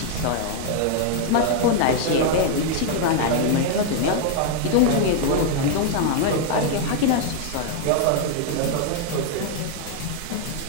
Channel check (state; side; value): different; both; correlation 0.00